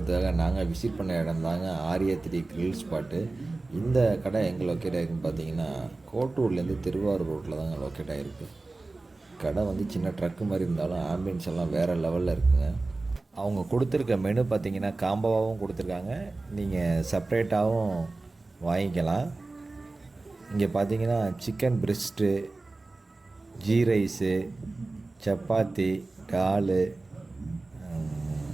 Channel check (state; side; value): quieter; left; 3.3 dB